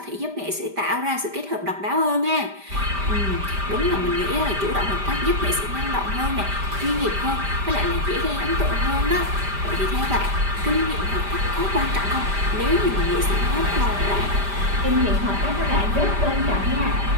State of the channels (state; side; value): late; left; 5.0 ms